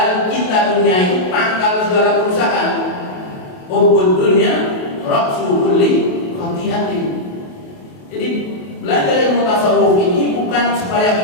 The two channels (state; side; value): late; right; 28 ms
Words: cinta dunia itu pangkal segala kerusakan. Hubbud dunya ra'su kulli khati'atin. Jadi belajar ilmu tasawuf ini bukan supaya